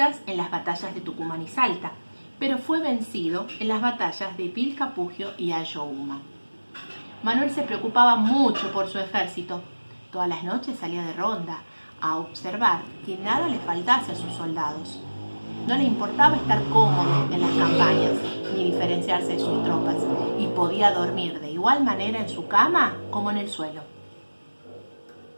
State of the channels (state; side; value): inverted; both; correlation -1.00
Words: en las batallas de Tucumán y Salta, pero fue vencido en las batallas de Pilcapugio y Ayohuma. Manuel se preocupaba mucho por su ejército. Todas las noches salía de ronda a observar que nada le faltase a sus soldados. No le importaba estar cómodo en las campañas ni diferenciarse de sus tropas y podía dormir de igual manera en su cama como en el suelo.